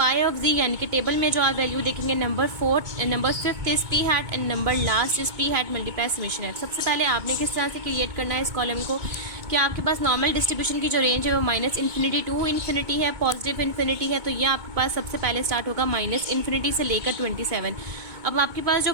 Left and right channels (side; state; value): left; late; 2.2 ms